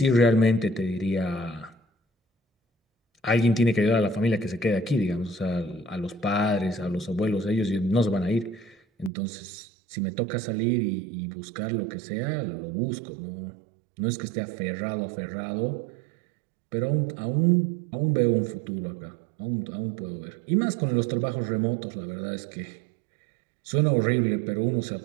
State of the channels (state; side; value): drops out; left; at 9.1 s